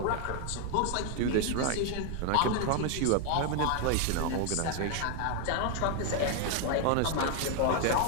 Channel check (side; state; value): both; different; correlation 0.01